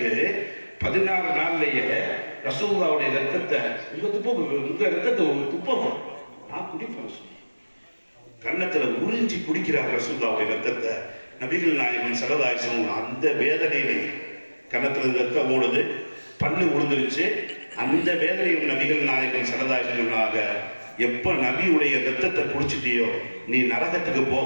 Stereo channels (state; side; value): inverted; both; correlation -1.00